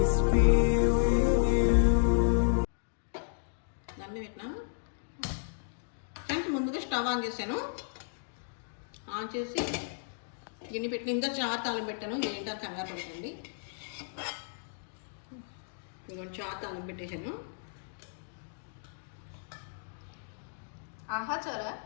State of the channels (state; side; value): silent; right; digital silence